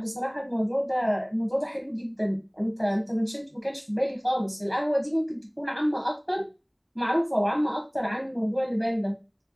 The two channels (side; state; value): both; identical; correlation 1.00